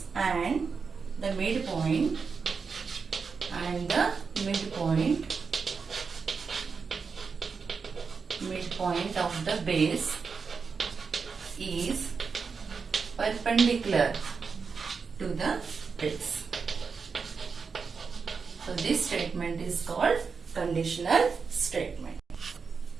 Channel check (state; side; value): quieter; left; 5.3 dB